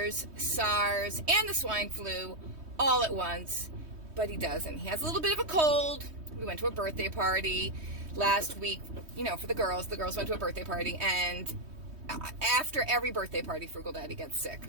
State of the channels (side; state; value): left; late; 3.2 ms